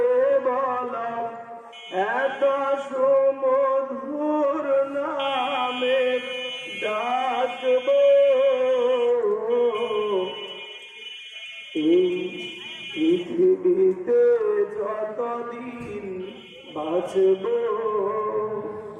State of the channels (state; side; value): identical; both; correlation 1.00